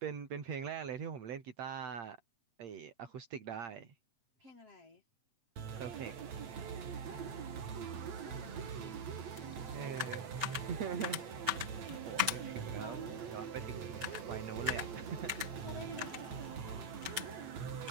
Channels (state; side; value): late; left; 7.9 ms